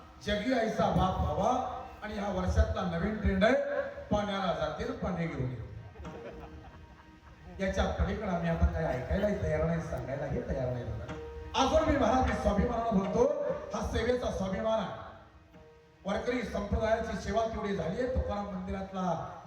जगी ऐसा बाप व्हावा. आणि ह्या वर्षातला नवीन ट्रेंड आहे, पाण्याला जातील पाणी घेऊन ये. याच्या पलीकडे आम्ही आता काही ऐकायलाही तयार नाही, सांगायलाही तयार नाही. अजून मी महाराज मी स्वाभिमानानं बोलतो, हा सेवेचा स्वाभिमान आहे. वारकरी संप्रदायाची सेवा तेवढी झाली आहे. तुकाराम मंदिरातला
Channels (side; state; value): both; identical; correlation 1.00